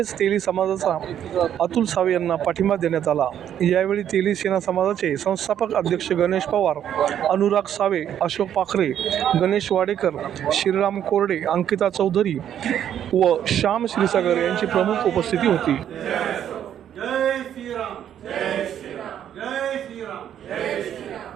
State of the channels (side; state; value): left; quieter; 10.0 dB